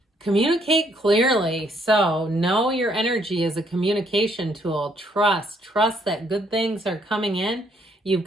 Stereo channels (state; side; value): normal; both; correlation 0.69